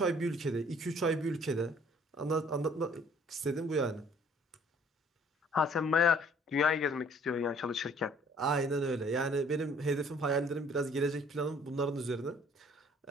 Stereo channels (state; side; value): normal; both; correlation 0.57